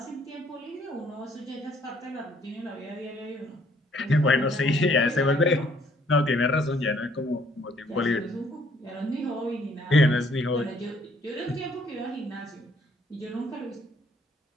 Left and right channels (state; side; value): normal; both; correlation 0.63